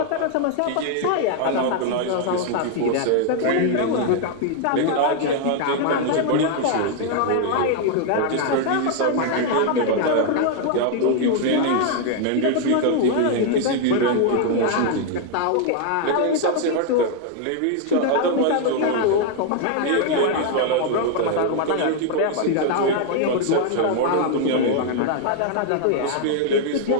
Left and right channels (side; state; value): both; different; correlation 0.00